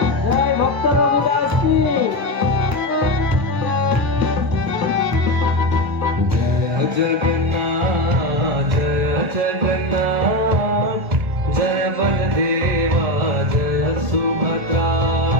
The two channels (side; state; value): left; late; 1.0 ms